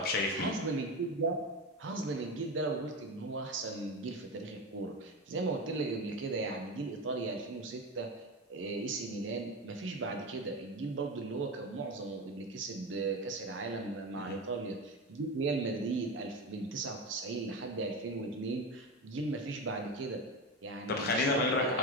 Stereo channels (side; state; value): both; normal; correlation 0.21